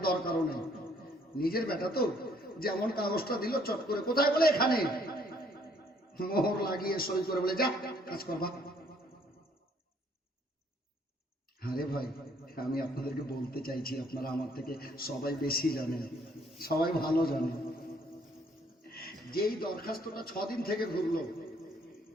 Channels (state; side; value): normal; both; correlation 0.64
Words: দরকারও নেই। নিজের বেটা তো, যেমন কাগজটা দিল চট করে, কোথায়? বলে এখানে। মোহর লাগিয়ে সই করে বলে যা কাজ করবা। আরে ভাই, আমি আপনাদেরকে বলতে চাইছি, আপনারা আমার থেকে সবাই বেশি জানেন, সবাই ভালো জানেন। যেই দরখাস্তটা 6 দিন থেকে ঘুরলো,